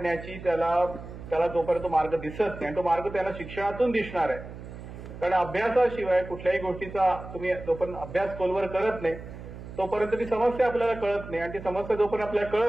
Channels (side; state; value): right; noise; hum, 13 dB below the sound